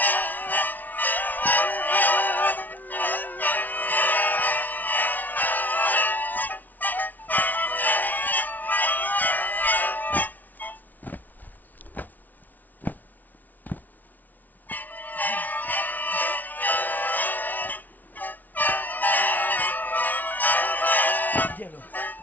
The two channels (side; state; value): right; late; 0.079 ms